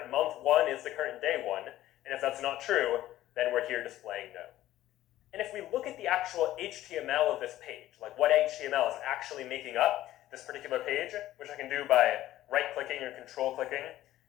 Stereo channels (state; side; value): quieter; right; 14.3 dB